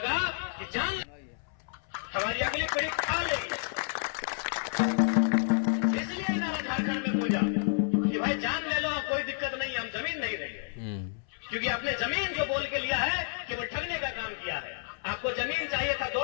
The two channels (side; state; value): right; silent; 58 dB below the other